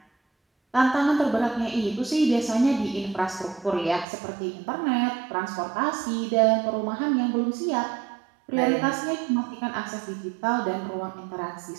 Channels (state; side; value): drops out; left; at 4.0 s